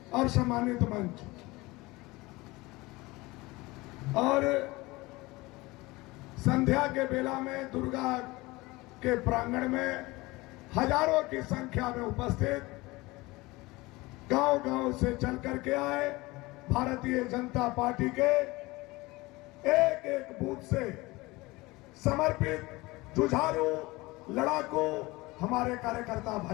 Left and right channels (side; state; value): right; quieter; 21.7 dB